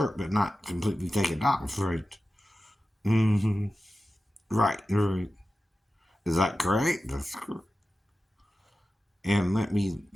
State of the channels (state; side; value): normal; both; correlation 0.93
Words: but not completely take it off, right? Mm-hmm. Right, right. Is that correct? That's correct. And let me